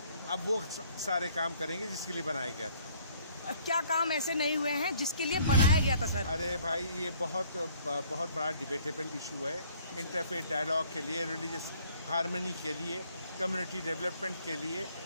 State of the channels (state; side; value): inverted; both; correlation -0.60